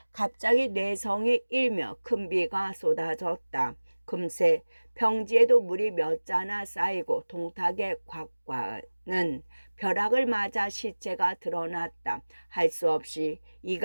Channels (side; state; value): both; inverted; correlation -1.00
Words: 갑자기 뇌성이 일며 큰 비가 쏟아졌다. 금세 평지에도 물이 몇 자나 쌓이고 동탁의 곽과는 벼락을 맞아 시체가 드러났다. 할 수 없이